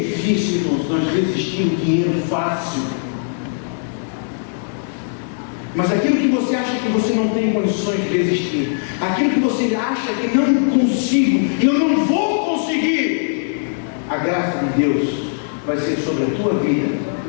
irmãos, nós resistir o dinheiro fácil. Mas aquilo que você acha que você não tem condições de resistir, aquilo que você acha que não consigo, eu não vou conseguir, a graça de Deus vai ser sobre a tua vida.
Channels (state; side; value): silent; right; digital silence